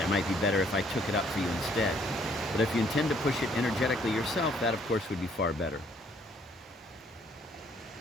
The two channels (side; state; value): both; normal; correlation 0.64